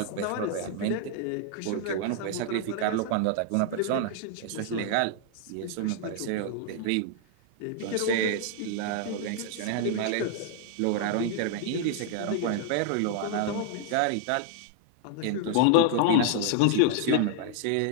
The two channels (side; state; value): both; different; correlation 0.00